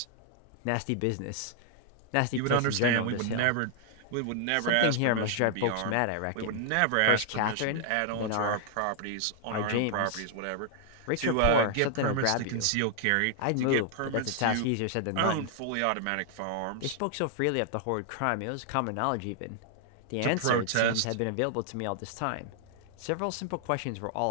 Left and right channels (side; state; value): both; different; correlation 0.00